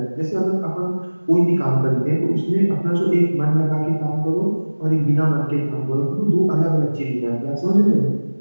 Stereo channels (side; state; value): both; inverted; correlation -1.00